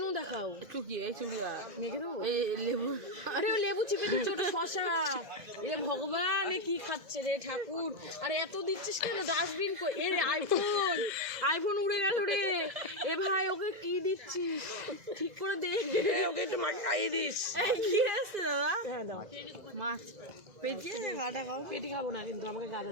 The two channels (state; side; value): late; left; 2.0 ms